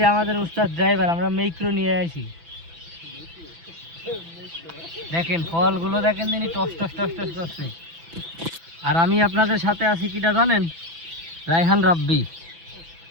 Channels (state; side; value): late; left; 6.0 ms